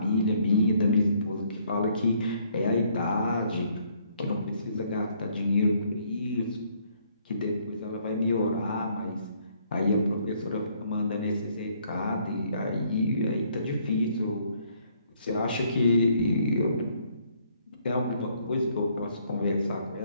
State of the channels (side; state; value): both; inverted; correlation -0.66